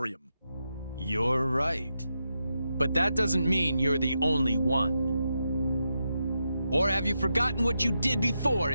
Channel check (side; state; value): both; inverted; correlation -0.86